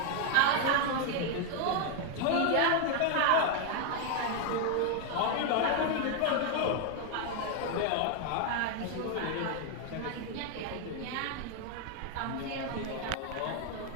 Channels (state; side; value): different; both; correlation 0.01